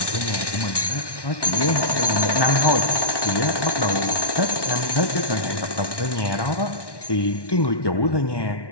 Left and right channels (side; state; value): right; late; 1.1 ms